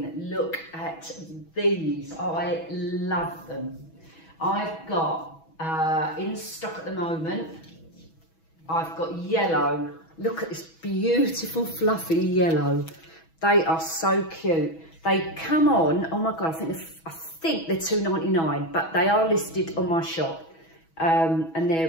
look at these. I love them. I've got, in stock at the moment, I've got yellow. Look at this beautiful fluffy yellow. They are so cute. They come on, oh my God, I think they're $2.99, but they are listed on my shop. And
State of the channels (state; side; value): late; right; 6.2 ms